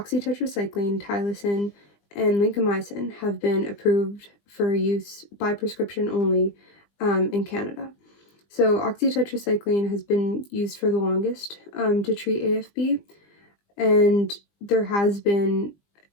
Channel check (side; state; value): right; late; 20 ms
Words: tylosin, and lincomycin, have been approved for use by prescription only in Canada. So oxytetracycline has been used for the longest to treat AFB, and there has been